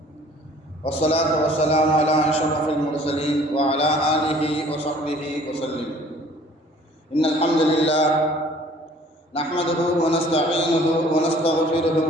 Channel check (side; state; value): both; normal; correlation 0.53